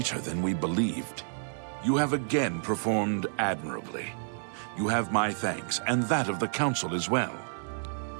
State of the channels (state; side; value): silent; left; digital silence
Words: than we believed. You have again performed admirably. You have my thanks, and that of the Council as well.